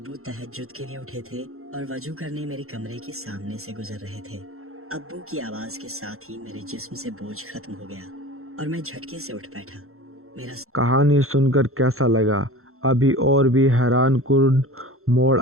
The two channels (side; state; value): left; late; 0.62 ms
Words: تہجد کے لیے اٹھے تھے اور وضو کرنے میرے کمرے کے سامنے سے گزر رہے تھے۔ ابو کی آواز کے ساتھ ہی میرے جسم سے بوجھ ختم ہو گیا اور میں جھٹکے سے اٹھ بیٹھا۔ میرا کہانی سن کر کیسا لگا؟ ابھی اور بھی حیران کن موڑ